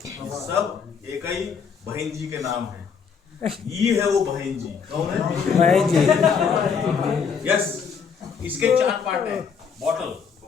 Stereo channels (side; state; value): right; quieter; 6.3 dB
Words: सब एक ही बहन जी के नाम है। ये है वो बहन जी। कौन है बहन जी? यस, इसके 4 पार्ट है। बॉटल,